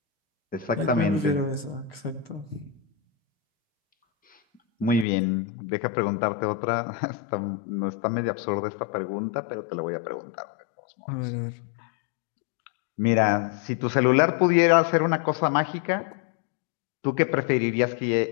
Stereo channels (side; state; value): right; drops out; at 5.1 s